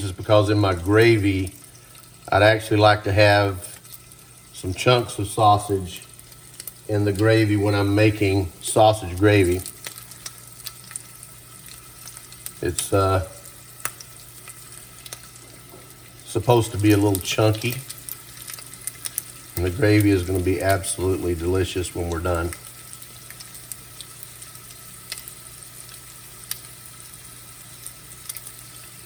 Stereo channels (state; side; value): identical; both; correlation 1.00